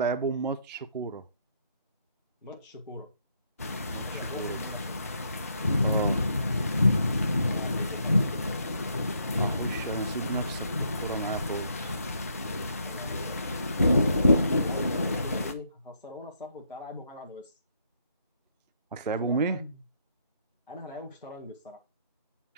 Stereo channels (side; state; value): both; inverted; correlation -0.73